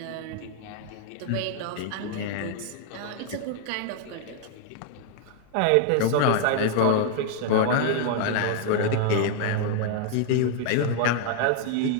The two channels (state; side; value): different; both; correlation 0.00